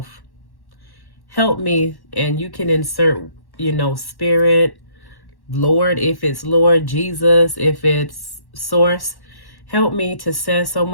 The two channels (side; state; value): right; late; 1.1 ms